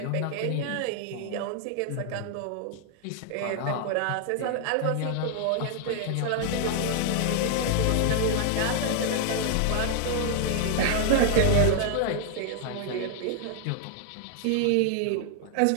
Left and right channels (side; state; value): both; different; correlation 0.00